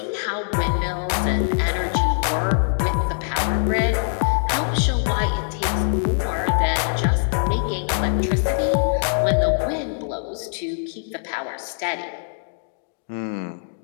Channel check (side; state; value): right; silent; digital silence